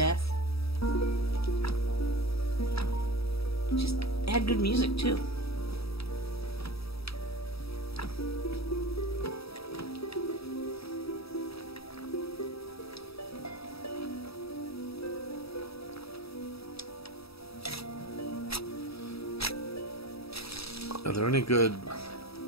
Just had good music too. Are there any good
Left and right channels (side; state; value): right; late; 0.77 ms